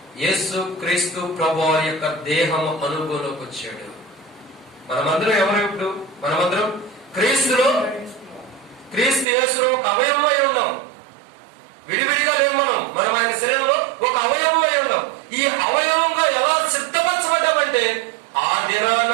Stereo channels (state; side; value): drops out; left; at 9.2 s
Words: యేసు క్రీస్తు ప్రభు యొక్క దేహం అనుభవంలోకి వచ్చాడు. మనమందరం ఎవరు? ఇప్పుడు మనమందరం క్రీస్తు యేసులో ఒక అవయవమై ఉన్నాం. విడివిడిగా లేవు. మనం ఆయన శరీరంలో ఒక అవయవమై ఉన్నాం. ఈ అవయవంగా ఎలా సిద్ధపరచబడ్డామంటే, ఆ దినాన